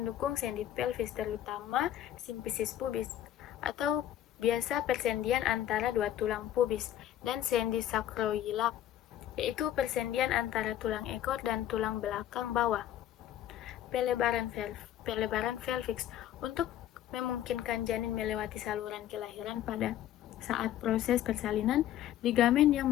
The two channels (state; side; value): quieter; right; 11.9 dB